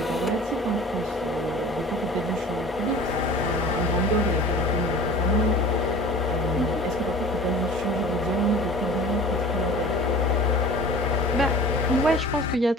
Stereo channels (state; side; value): normal; both; correlation 0.42